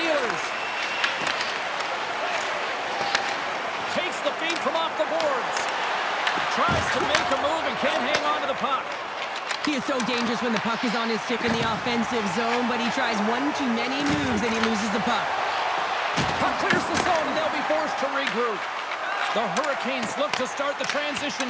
Ehlers. Takes the feed from off the boards. Tries to make a move and can't hang on to the puck. He is so dangerous when the puck is on his stick in the offensive zone, but he tries one too many moves and he loses the puck. Puck clears the zone and they'll be forced to regroup. The Hurricanes look to start the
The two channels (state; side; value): identical; both; correlation 1.00